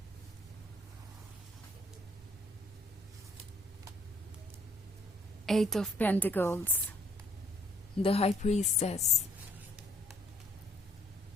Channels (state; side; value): normal; both; correlation 0.64